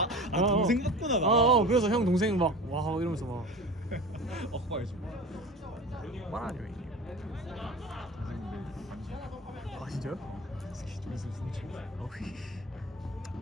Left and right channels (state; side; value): normal; both; correlation 0.34